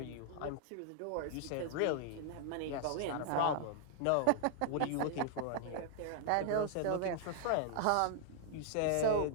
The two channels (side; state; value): both; different; correlation 0.00